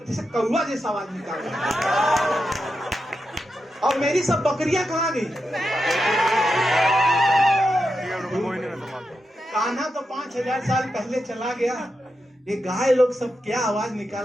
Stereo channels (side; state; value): both; normal; correlation 0.87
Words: जैसे कौवा जैसा आवाज निकाल रही है। और मेरी सब बकरियां कहाँ गई? कान्हा तो 5000 साल पहले चला गया। ये गाय लोग सब क्या आवाज